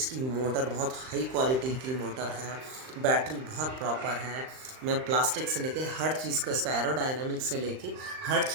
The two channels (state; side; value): late; left; 39 ms